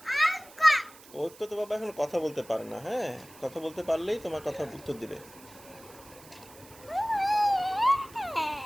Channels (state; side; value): noise; right; hiss, 21 dB below the sound